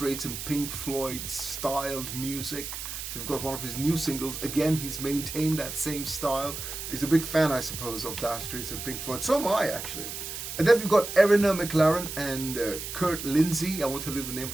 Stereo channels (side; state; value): right; noise; hiss, 7 dB below the sound